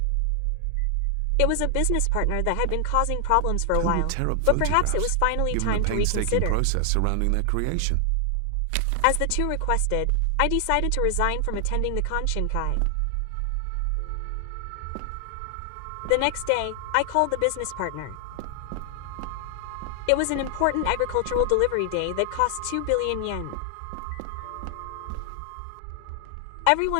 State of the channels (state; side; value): different; both; correlation 0.00